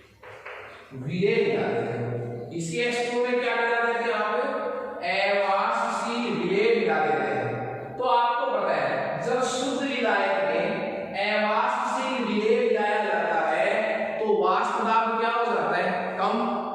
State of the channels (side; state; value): both; identical; correlation 1.00